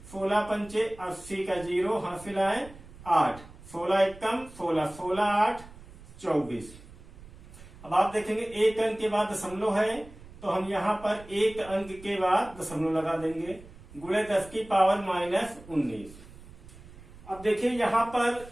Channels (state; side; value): noise; right; rumble, 19 dB below the sound